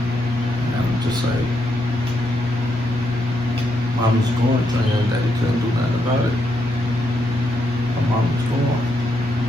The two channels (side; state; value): both; normal; correlation 0.79